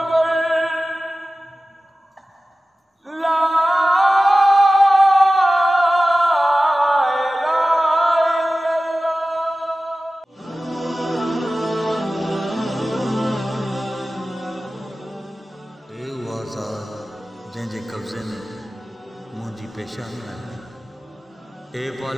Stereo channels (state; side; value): normal; both; correlation 0.96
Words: जंहिंजे कब्ज़े में मुंहिंजी पेशानी आहे। ए